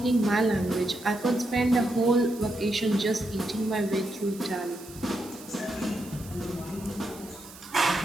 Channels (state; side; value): noise; right; hiss, 18 dB below the sound